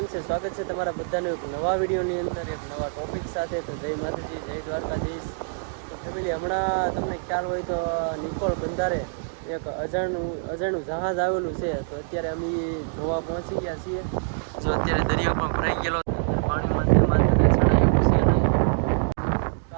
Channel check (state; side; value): silent; left; digital silence